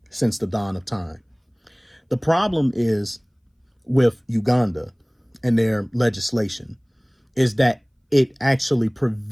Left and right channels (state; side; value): identical; both; correlation 1.00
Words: since the dawn of time. The problem is with Uganda and their legislation is that it actually